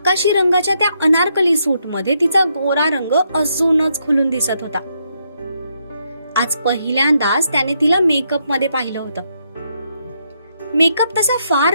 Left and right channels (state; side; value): inverted; both; correlation -0.78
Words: रंगाच्या त्या अनारकली सूटमध्ये तिचा गोरा रंग अजूनच खुलून दिसत होता. आज पहिल्यांदाच त्याने तिला मेकअप मध्ये पाहिलं होतं. मेकअप तसा फार